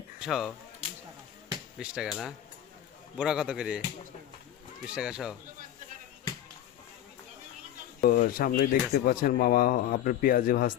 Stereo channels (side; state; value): right; quieter; 11.5 dB